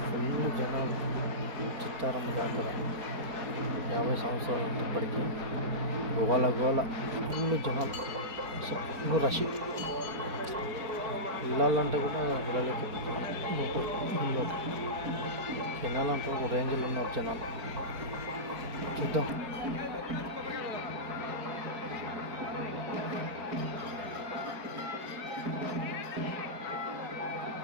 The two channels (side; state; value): left; late; 4.4 ms